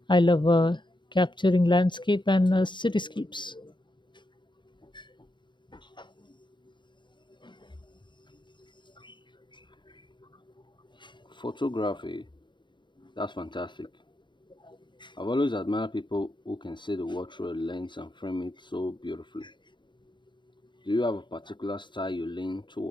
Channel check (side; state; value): right; late; 0.23 ms